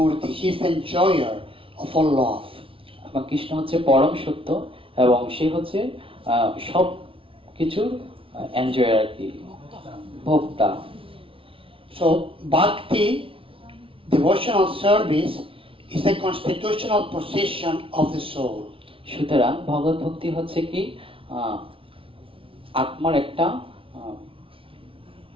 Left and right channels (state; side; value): late; left; 0.26 ms